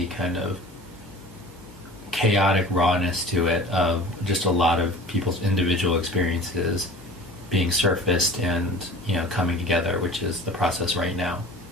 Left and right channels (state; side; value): normal; both; correlation 0.42